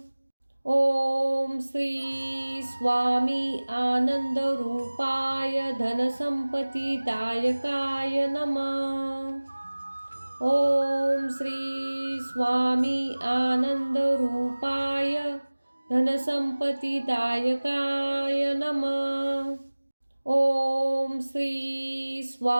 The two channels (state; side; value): inverted; both; correlation -1.00